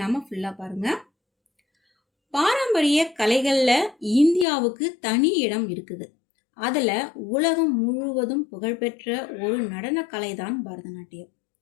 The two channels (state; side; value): drops out; right; at 4.5 s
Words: ஃபுல்லா பாருங்க. பாரம்பரிய கலைகள்ல இந்தியாவுக்கு தனி இடம் இருக்குது. அதுல உலகம் முழுவதும் புகழ்பெற்ற ஒரு நடன கலை தான் பரதநாட்டியம்.